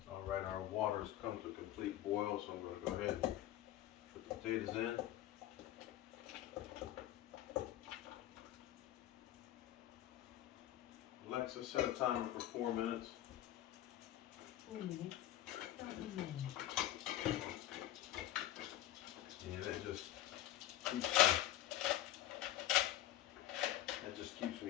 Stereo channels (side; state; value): right; quieter; 13.6 dB